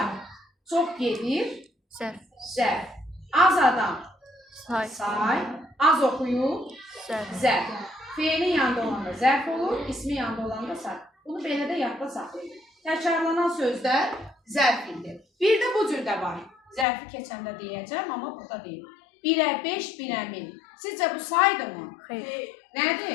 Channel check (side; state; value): right; drops out; at 16.9 s